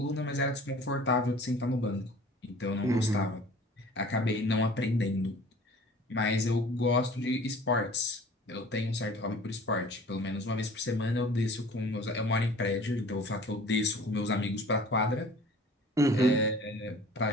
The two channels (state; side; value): normal; both; correlation 0.47